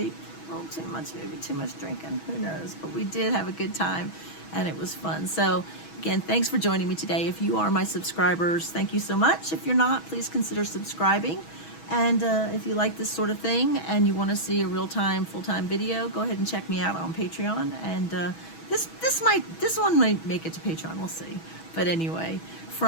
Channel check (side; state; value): right; late; 6.2 ms